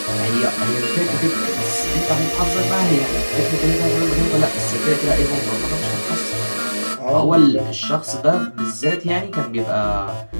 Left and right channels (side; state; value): both; inverted; correlation -1.00